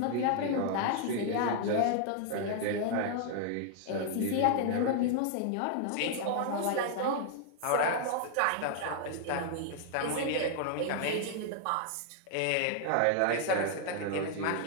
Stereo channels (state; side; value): different; both; correlation -0.01